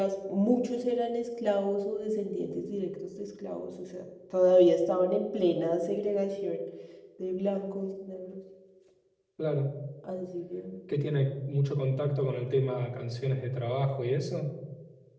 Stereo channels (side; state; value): both; identical; correlation 1.00